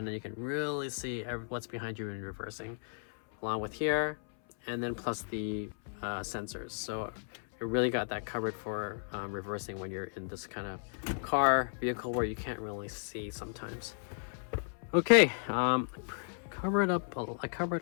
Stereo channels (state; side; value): silent; right; 55 dB below the other